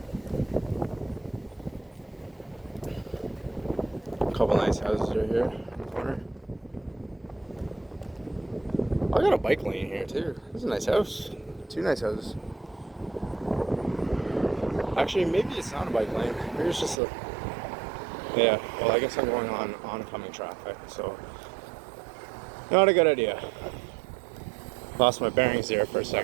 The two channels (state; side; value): drops out; left; at 16.9 s